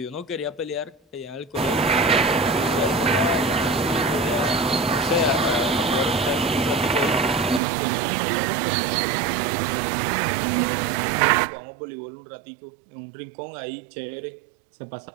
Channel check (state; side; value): drops out; left; at 7.6 s